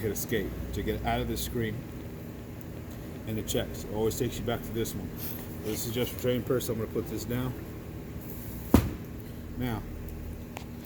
hit escape to get out of this screen, and it checks. It always takes you back to this one. This is just for training purposes. I'm going to put this down. Now,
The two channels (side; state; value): both; identical; correlation 1.00